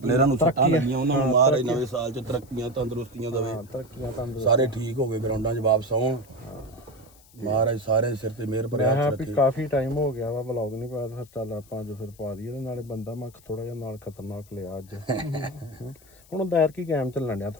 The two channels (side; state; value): left; noise; hiss, 26 dB below the sound